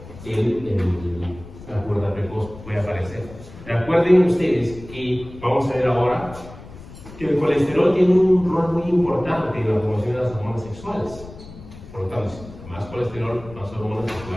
la pubertad precoz, puede aparecer. Recuerden ustedes que vamos a ver ahora que el colesterol tiene un rol muy importante en la formación de las hormonas sexuales. Por lo tanto, más colesterol, más hormonas que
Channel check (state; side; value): noise; left; rumble, 16 dB below the sound